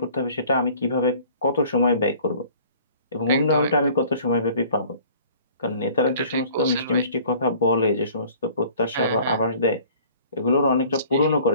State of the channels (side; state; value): both; inverted; correlation -0.52